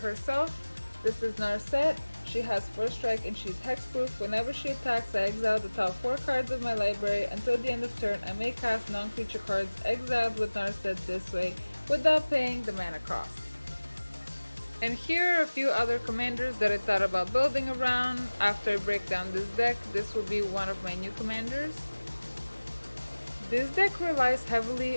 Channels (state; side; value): inverted; both; correlation -1.00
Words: This is Narset. She has first strike and she's hexproof. Whenever she attacks, I exile the top 4 cards of my library. Until the end of turn, I may cast non-creature cards exiled with Narset this way without paying the mana cost. And here are a few other commanders that I thought about building around. After I break down this deck, this will be one of my new commanders. This deck relies